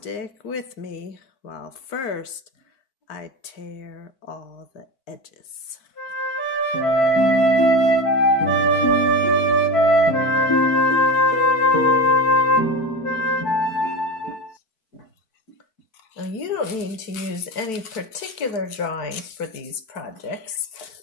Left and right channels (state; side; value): late; right; 4.6 ms